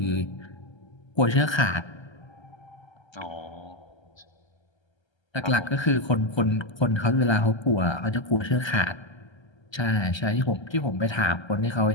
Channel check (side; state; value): right; late; 1.3 ms